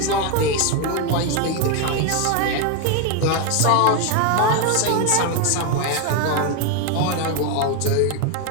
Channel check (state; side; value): different; both; correlation 0.01